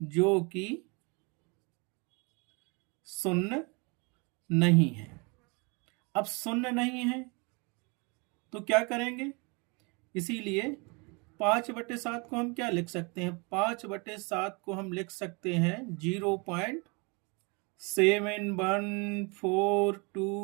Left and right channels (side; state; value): left; quieter; 30.5 dB